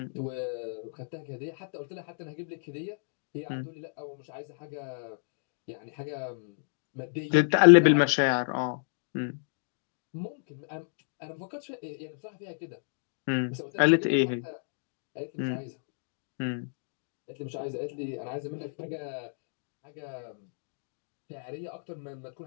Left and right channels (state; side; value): silent; right; digital silence